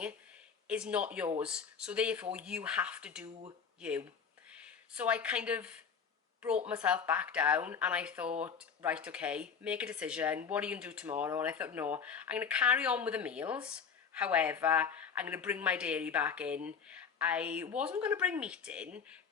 is not yours. So therefore you have to do you. So I kind of brought myself back down and I thought, right, okay, make a decision. What are you going to do tomorrow? And I thought, no, I'm going to carry on with the meals. However, I'm going to bring my dairy back in. I wasn't going to bring meat in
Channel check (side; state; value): right; quieter; 6.4 dB